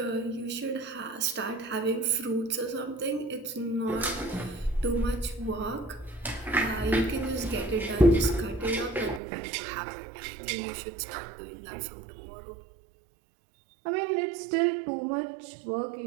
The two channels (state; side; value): drops out; left; at 9.2 s